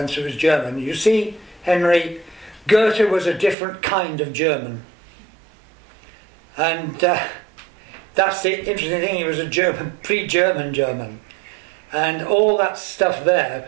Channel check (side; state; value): left; drops out; at 3.6 s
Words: who was German, you see, Henry, Goethe was a different kind of German. And that's the interesting thing, he was a German, pre-German German. And all that stuff there